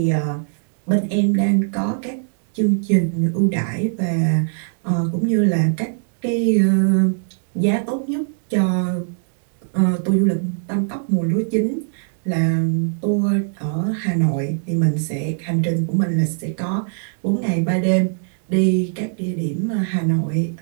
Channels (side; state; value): left; silent; digital silence